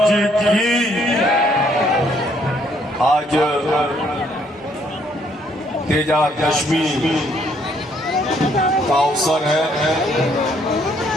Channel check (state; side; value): normal; both; correlation 0.67